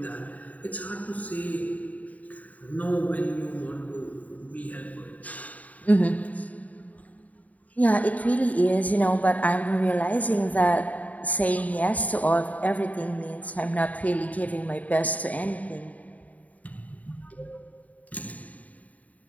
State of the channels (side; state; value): right; late; 0.072 ms